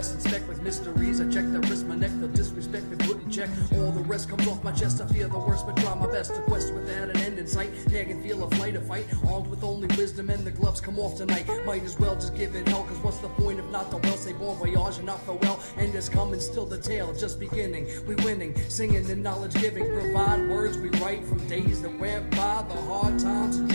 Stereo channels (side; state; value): both; inverted; correlation -1.00